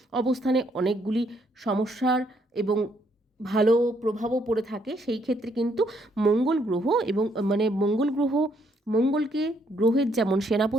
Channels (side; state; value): both; normal; correlation 0.71